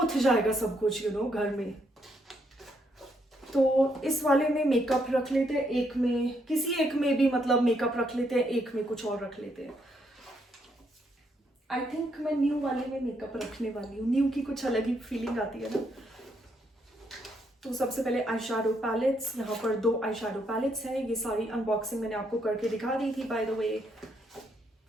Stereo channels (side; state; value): both; normal; correlation 0.75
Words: जाएगा सब कुछ घर में। तो इस वाले में मेकअप रख लेते हैं, एक में किसी एक में भी मतलब मेकअप रख लेते हैं, एक में कुछ और रख लेते हैं। आई थिंक मैं न्यू वाले में मेकअप रखने वाली हूँ, न्यू की कुछ अलग ही फीलिंग आती है ना। तो सबसे पहले आई शैडो पैलेट्स, यहाँ पर 2 आई शैडो पैलेट्स हैं। ये सारी अनबॉक्सिंग मैंने आपको करके दिखा दी थी बाय द वे।